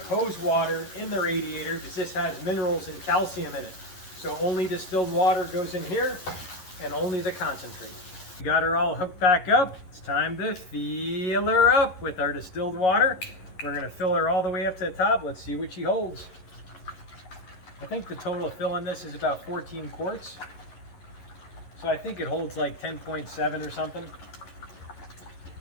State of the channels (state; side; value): late; right; 11 ms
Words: hose water in the radiator because this has minerals and calcium in it. So only distilled water goes in here and only the concentrate. We got her all hooked back up. It's time to fill her up with our distilled water. We're going to fill her all the way up to the top. Let's see what she holds. I think the total fill in this is about 14 quarts. So I think it holds like 10.7 or something.